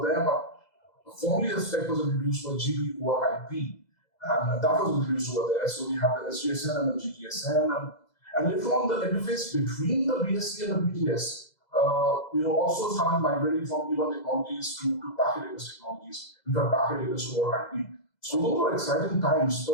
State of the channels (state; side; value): late; right; 2.0 ms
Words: there, but formally the spec was introduced for GB over IP. And that was introduced over there. So we had the SGSN and the GTSN, and later on the interface between the BSC and the BTS, also started migrating from E1 technologies to packet AS technologies, in fact, packet AS over IP. So those were exciting times.